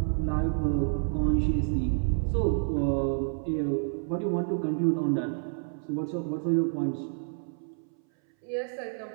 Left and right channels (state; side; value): silent; left; 59 dB below the other